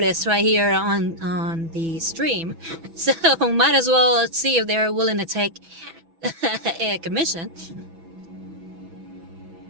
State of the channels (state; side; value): late; left; 6.1 ms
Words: right here on the stream, so might as well see if they're willing to take a commission.